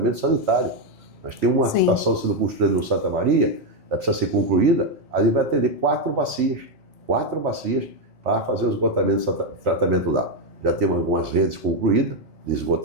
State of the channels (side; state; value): both; normal; correlation 0.04